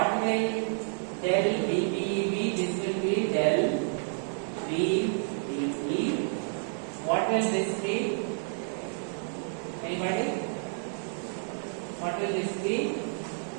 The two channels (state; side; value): silent; left; 58 dB below the other